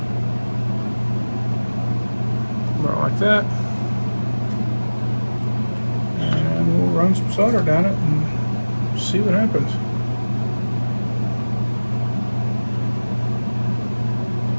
About like that. And we'll run some solder down it and see what happens.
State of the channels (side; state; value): both; inverted; correlation -1.00